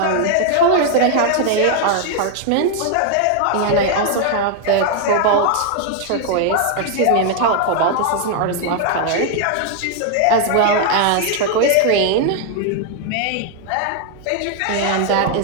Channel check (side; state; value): both; different; correlation 0.00